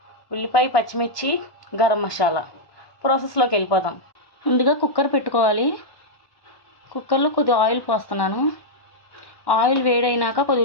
ఉల్లిపాయ పచ్చిమిర్చి, గరం మసాలా. ప్రాసెస్లోకి వెళ్ళిపోదాం. ముందుగా కుక్కర్ పెట్టుకోవాలి. కుక్కర్లో కొద్దిగా ఆయిల్ పోస్తున్నాను. ఆయిల్ వేడైనాక కొద్ది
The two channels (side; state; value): right; late; 1.1 ms